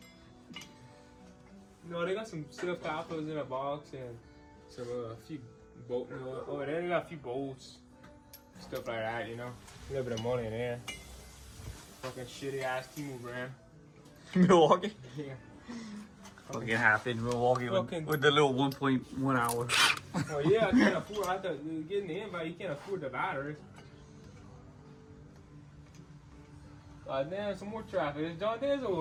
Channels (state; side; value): identical; both; correlation 1.00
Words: No, they got some silk coppers in a box and some few bolt. Oh, they got a few bolts, stuff like that. You know, a little bit of money in there. Fucking shitty ass T-Move brand. Milwaukee? Yeah. Fucking half in Milwaukee Fucking- with the little 1.1 hour. Oh yeah, I can't afford. I thought getting the invite, you can't afford the batteries. Damn, some more traffic. Is John Den's or